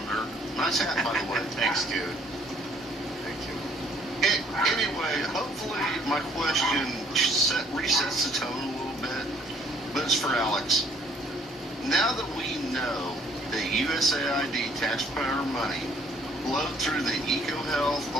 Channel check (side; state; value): both; normal; correlation 0.62